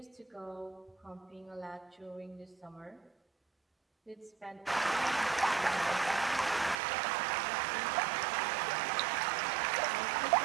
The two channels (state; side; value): drops out; left; at 6.8 s